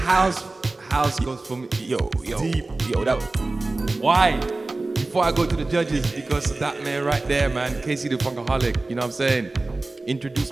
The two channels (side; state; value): left; quieter; 3.1 dB